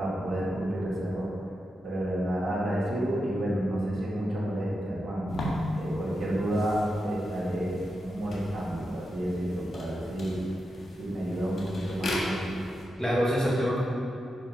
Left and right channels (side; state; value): both; normal; correlation 0.88